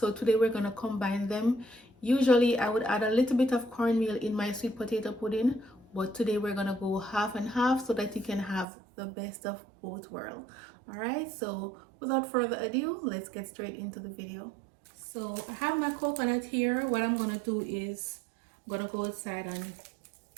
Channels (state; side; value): drops out; left; at 8.7 s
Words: today we're going to combine them. Usually I would add a little bit of cornmeal in my sweet potato pudding, but today we're going to go half and half so that you can have the best of both worlds. Alright, so without further ado, let's get straight into the video. So I have my coconut here. What I'm going to do is I'm going to go outside and